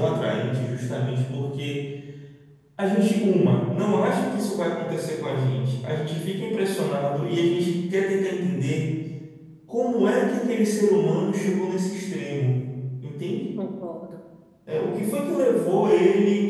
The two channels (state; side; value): identical; both; correlation 1.00